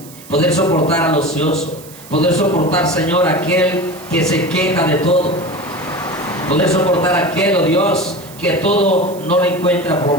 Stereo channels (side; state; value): right; noise; hiss, 20 dB below the sound